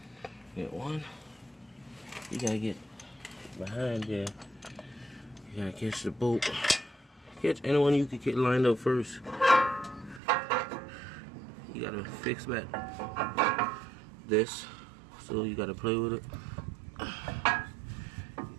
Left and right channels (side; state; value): left; drops out; at 10.2 s